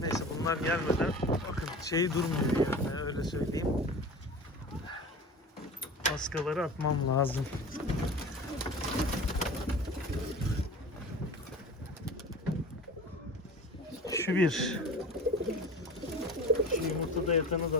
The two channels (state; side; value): normal; both; correlation 0.36